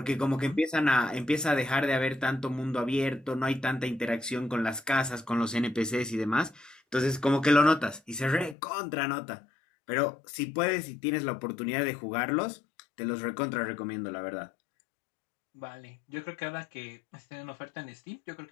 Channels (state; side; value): drops out; right; at 8.6 s